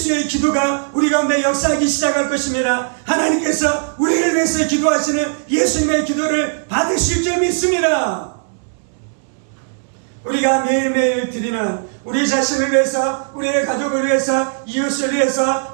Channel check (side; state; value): left; silent; 67 dB below the other